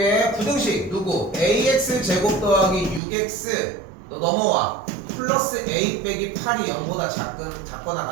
부등식 누구? ax 제곱 더하기 6x 너 넘어와. 플러스 a 빼기 8이 0보다 작거나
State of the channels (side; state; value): left; drops out; at 3.0 s